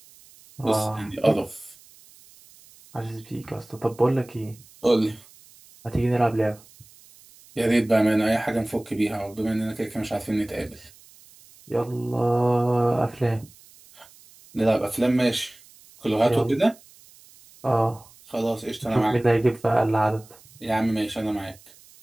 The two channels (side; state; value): right; noise; hiss, 25 dB below the sound